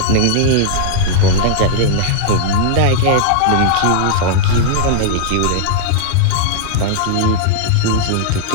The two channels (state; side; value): different; both; correlation -0.01